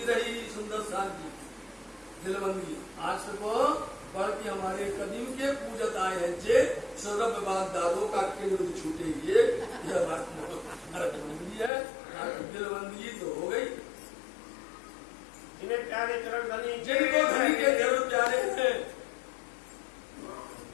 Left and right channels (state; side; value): drops out; right; at 11.7 s